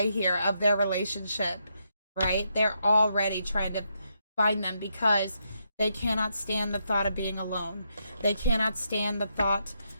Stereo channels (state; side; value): inverted; both; correlation -0.80